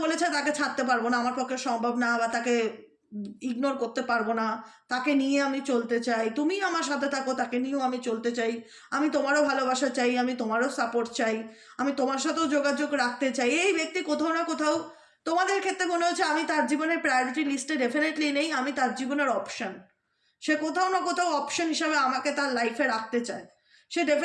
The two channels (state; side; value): identical; both; correlation 1.00